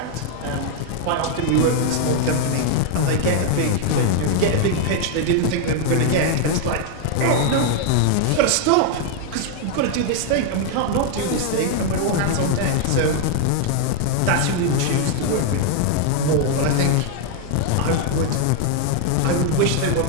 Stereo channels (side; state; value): both; different; correlation 0.00